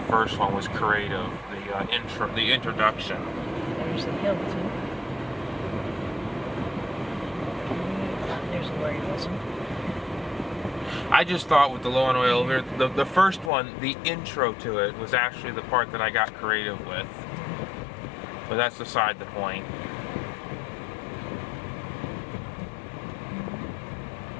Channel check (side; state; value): right; drops out; at 13.5 s